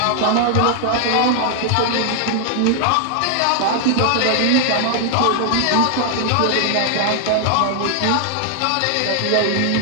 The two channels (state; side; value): different; both; correlation 0.00